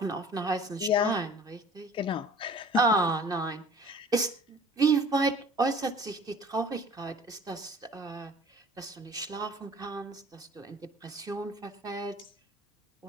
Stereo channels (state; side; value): normal; both; correlation 0.47